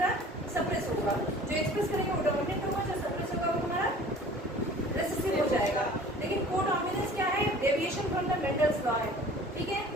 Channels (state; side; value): normal; both; correlation 0.47